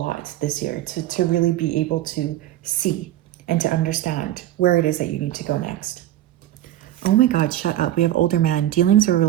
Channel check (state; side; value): quieter; left; 13.4 dB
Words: this year to really be able to see and to understand where it is that you need to go next. Oh my God, shut up. We have older man, dealings or